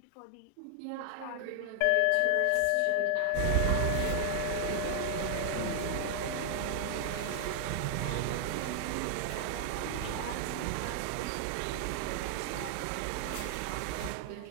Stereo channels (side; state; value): both; different; correlation 0.00